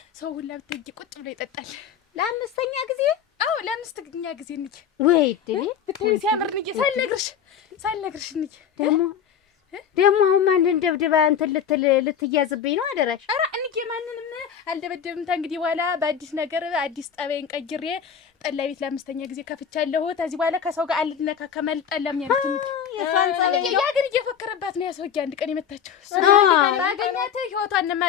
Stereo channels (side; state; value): right; quieter; 8.0 dB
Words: ሰው ሁላ ብታይ ቁጭ ብሎ ይጠጣል። ለአምስተኛ ጊዜ? አዎ ለአምስተኛ ጊዜ እንጂ ወይ ድል ብታይ ሲያምር እንጂ ሳልነግርሽ እንጂ ደግሞ አሁን ማንን ደብድባ እንትን ልትያዝብኝ ነው? አደራሽ። ኧረ እንጂ ማንንም አልደበደብም። እንግዲህ በኋላ በአዲስ ነገር አዲስ ጠባይን ቀይሬ ጠላ ቤት ለአምስተኛ ጊዜ ከፍቻለሁ። ከዚህ በኋላ ከሰው ጋር አልነካከም አልጣላም ያለች እንጂ የሷን ጸባይ ያ ግን እየፎከረባት ነው። ያሰውዬ አንድ ቀን የመታቸው ባገኛት ህይወቷን